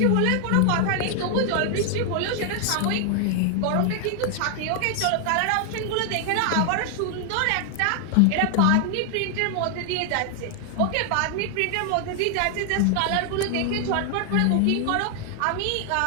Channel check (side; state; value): both; different; correlation 0.00